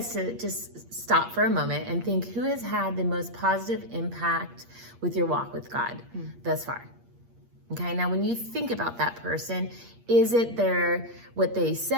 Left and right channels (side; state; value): left; late; 8.5 ms